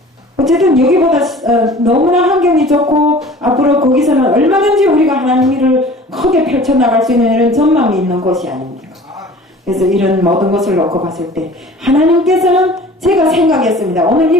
어쨌든 여기보다 너무나 환경이 좋고 앞으로 거기서는 얼마든지 우리가 하나님 일을 크게 펼쳐나갈 수 있는 이런 전망이 있는 곳이 아닙니까? 그래서 이런 모든 것을 놓고 봤을 때 하나님께서는 제가 생각했습니다. 오늘 이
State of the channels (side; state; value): both; normal; correlation 0.45